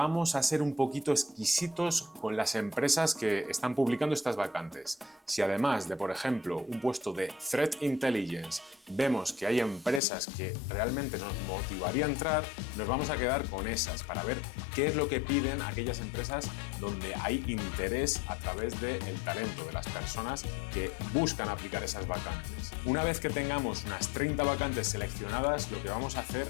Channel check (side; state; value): right; drops out; at 10.0 s